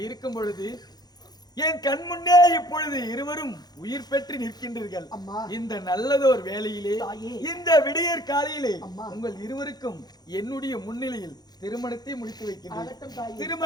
இருக்கும் பொழுது என் கண் முன்னே இப்பொழுது இருவரும் உயிர் பெற்று நிற்கின்றீர்கள். அம்மா. இந்த நல்லதோர் வேளையிலே, தாயே. இந்த விடியற் காலையிலே அம்மா. உங்கள் இருவருக்கும் என்னுடைய முன்னிலையில் திருமணத்தை முடித்து ஆகட்டும் வைக்கின்றேன். தாயே.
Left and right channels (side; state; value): right; late; 0.19 ms